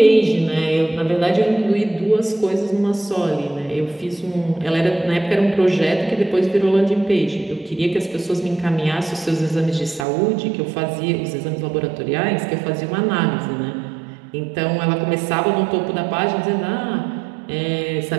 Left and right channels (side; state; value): left; drops out; at 10.1 s